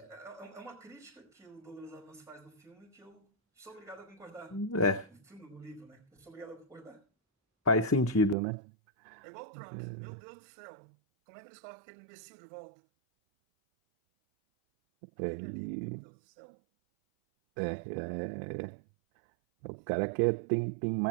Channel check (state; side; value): drops out; left; at 8.3 s